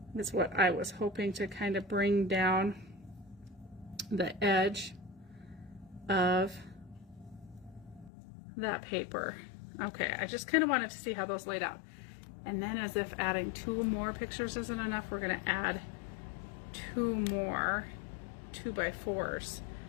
That's what I was hoping to kind of bring down the edge of that paper. Okay, I just kind of wanted to see how those laid out. And then, as if adding 2 more pictures isn't enough, we're going to add 2 more 2x4s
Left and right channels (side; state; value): right; drops out; at 8.1 s